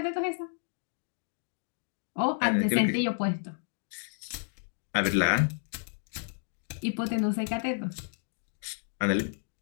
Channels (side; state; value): right; silent; digital silence